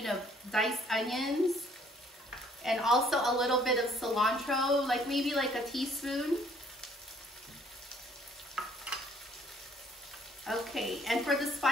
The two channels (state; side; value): normal; both; correlation 0.61